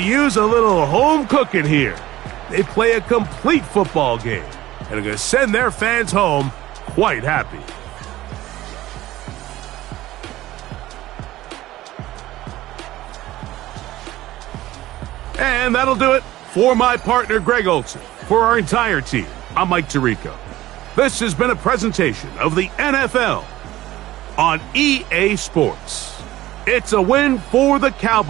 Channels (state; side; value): quieter; left; 15.8 dB